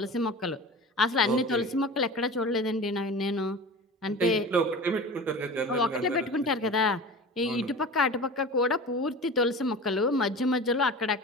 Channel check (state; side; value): normal; both; correlation 0.34